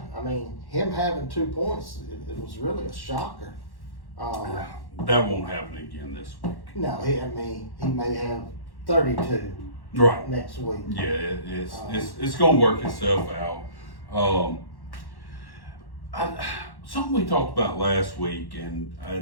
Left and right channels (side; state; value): right; late; 1.1 ms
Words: I mean, him having 2 points, it was really a shocker. That won't happen again this week. No, he may have 32 Right. next week. Yeah, it's going to work itself out. Something we talked about last week, and